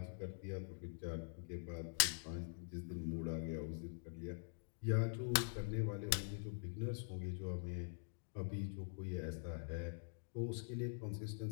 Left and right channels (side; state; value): right; silent; digital silence